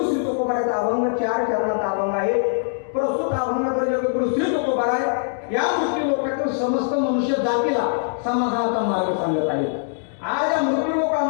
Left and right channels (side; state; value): right; silent; digital silence